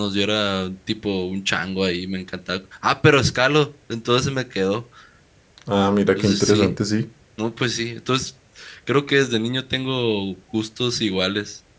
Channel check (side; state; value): both; identical; correlation 1.00